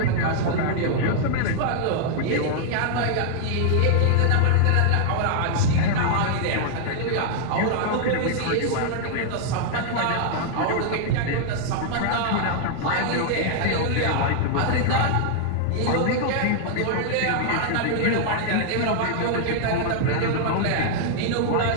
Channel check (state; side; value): different; both; correlation -0.01